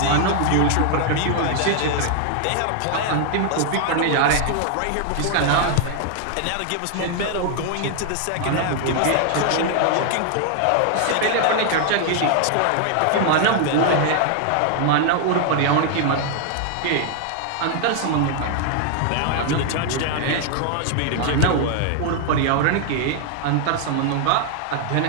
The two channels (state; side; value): different; both; correlation 0.00